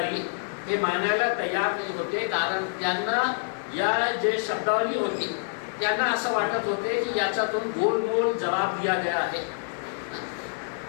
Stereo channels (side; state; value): right; silent; digital silence